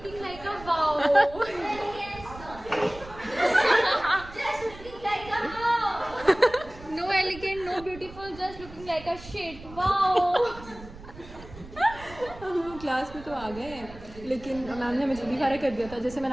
like a wow. Just looking like a wow. No elegant, no beautiful, just looking like a shit. Wow. हम क्लास में तो आ गए हैं, लेकिन मैम ने हमें जल्दी फारिग कर दिया था। जैसे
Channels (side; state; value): right; noise; rumble, 17 dB below the sound